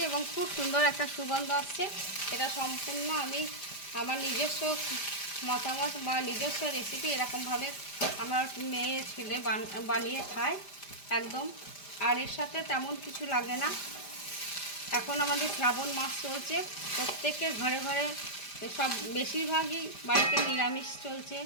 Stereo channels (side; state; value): right; late; 5.0 ms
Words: এবং খুব সুন্দর একটা সুগন্ধ আসছে। এটা সম্পূর্ণ আমি আমার নিজস্ব মতামত বা নিজস্ব রেসিপি, এরকমভাবে আমার মেয়ে ছেলে বানিয়ে খায় একদম। আর এর সাথে তেমন কিছু লাগে না। এখন আমাদের শ্রাবণ মাস চলছে, প্রত্যেকের ঘরে ঘরে সব বেশিরভাগই বাড়িতে নিরামিষ চলছে,